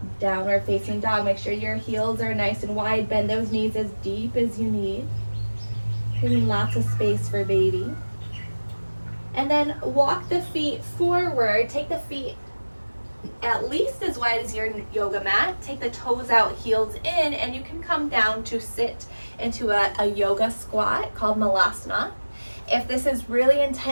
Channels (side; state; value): both; inverted; correlation -1.00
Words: downward facing dog. Make sure your heels are nice and wide. Bend those knees as deep as you need. Giving lots of space for baby. And then walk the feet forward. Take the feet at least as wide as your yoga mat. Take the toes out, heels in, and you can come down to sit into a yoga squat called Malasana. If this is really